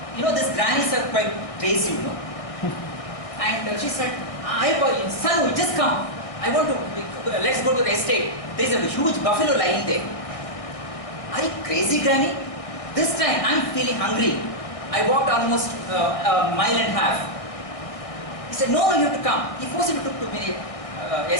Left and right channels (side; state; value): right; late; 1.6 ms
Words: you know, these grannies are quite crazy, you know. And she said, "Son, just come. I want to. Let's go to the estate. There is a huge buffalo lying there." Are you crazy, granny? This time I'm feeling hungry. I walked almost a mile and a half. He said, "No, you have to come." He forcibly took to me